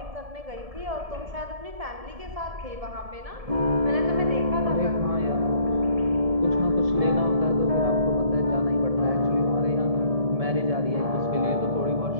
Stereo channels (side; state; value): left; late; 1.7 ms